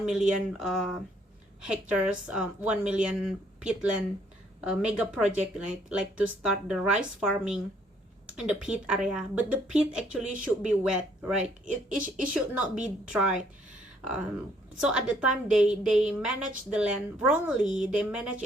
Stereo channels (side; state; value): both; normal; correlation 0.66